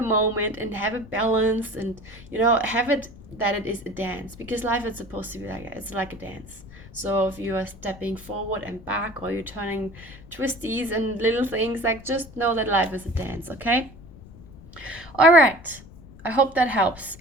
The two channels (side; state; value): left; noise; rumble, 19 dB below the sound